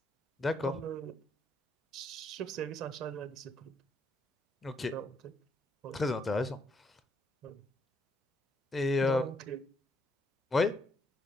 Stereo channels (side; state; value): both; normal; correlation 0.74